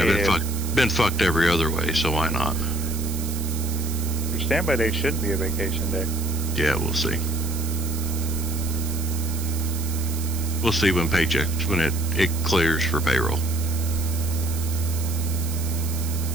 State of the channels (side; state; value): right; noise; hiss, 10 dB below the sound